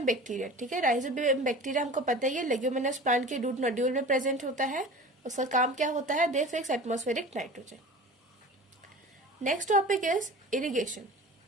bacteria, ठीक है, राइजोबियम बैक्टीरिया हमको पता ही है लेग्यूमिनस प्लांट के रूट नोड्यूल में प्रेजेंट होता है। उसका काम क्या होता है, they fix atmospheric nitrogen. Next topic is irrigation.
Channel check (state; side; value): normal; both; correlation 0.38